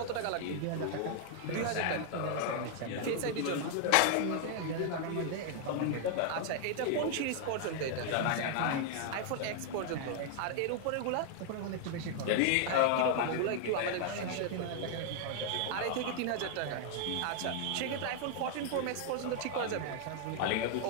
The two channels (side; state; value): both; different; correlation 0.00